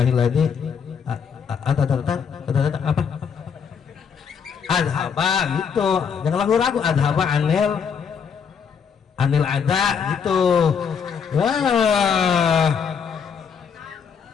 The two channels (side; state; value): right; quieter; 6.7 dB